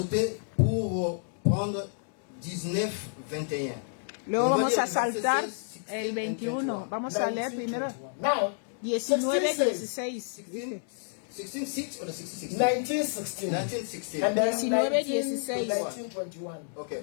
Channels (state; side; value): silent; right; 58 dB below the other